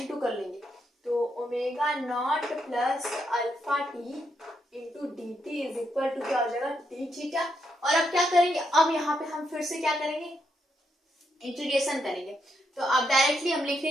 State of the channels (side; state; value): both; normal; correlation 0.80